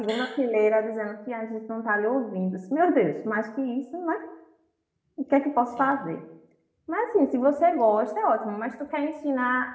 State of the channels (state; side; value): identical; both; correlation 1.00